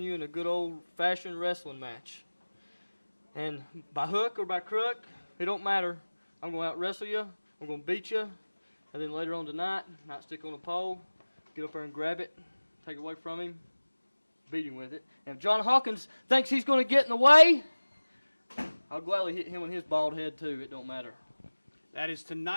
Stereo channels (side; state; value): both; inverted; correlation -1.00